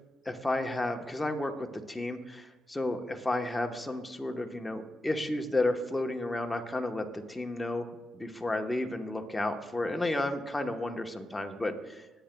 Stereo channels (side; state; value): both; normal; correlation 0.90